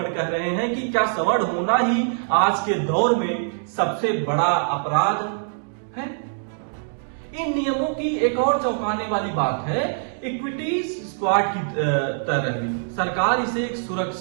कह रहे हैं कि क्या सवर्ण होना ही आज के दौर में सबसे बड़ा अपराध है? इन नियमों की एक और चौंकाने वाली बात है इक्विटी स्क्वाड की तरह भी। सरकार इसे एक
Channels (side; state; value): left; silent; digital silence